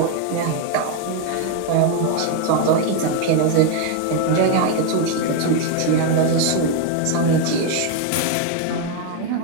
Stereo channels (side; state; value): both; different; correlation 0.01